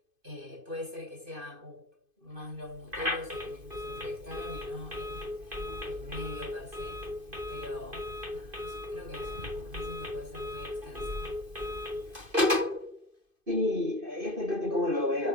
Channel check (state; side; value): late; left; 2.5 ms